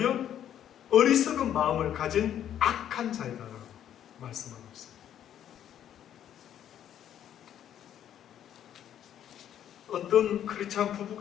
어리석은 마음을 가진 악한 자이다라고 말씀하고 있습니다. 어떤 크리스찬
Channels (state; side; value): quieter; right; 10.4 dB